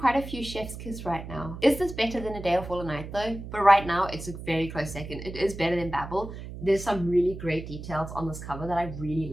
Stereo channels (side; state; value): right; noise; hum, 10 dB below the sound